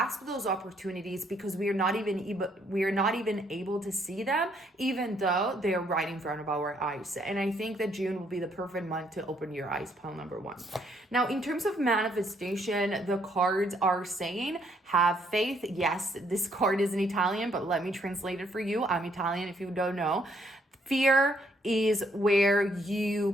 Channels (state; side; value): normal; both; correlation 0.69